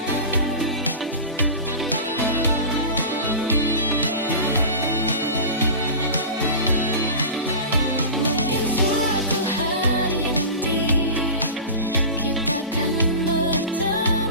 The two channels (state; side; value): inverted; both; correlation -0.31